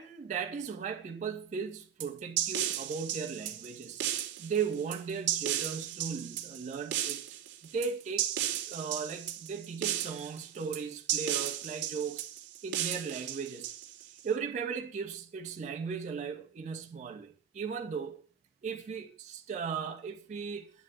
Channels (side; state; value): left; quieter; 7.9 dB